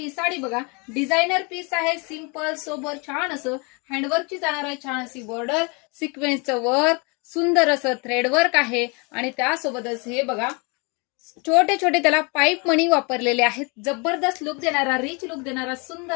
साडी बघा, डिझायनर पीस आहे, सिंपल सोबर छान असं हँडवर्कची जाणार आहे, छान अशी बॉर्डर, सिक्वेन्सचं वर्क, सुंदर असं थ्रेड वर्क आहे आणि त्यासोबतच हे बघा छोटे छोटे त्याला पाईप मणी वापरलेले आहेत। जबरदस्त लुक देणारा, रिच लुक देणारा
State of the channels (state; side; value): quieter; right; 30.9 dB